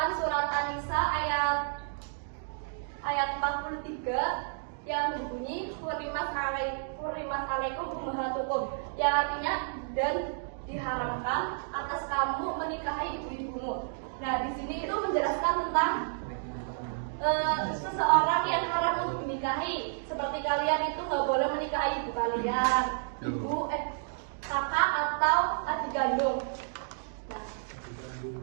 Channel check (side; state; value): left; silent; digital silence